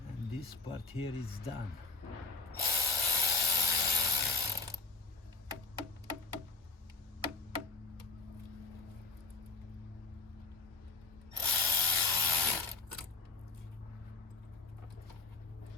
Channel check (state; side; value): quieter; right; 3.7 dB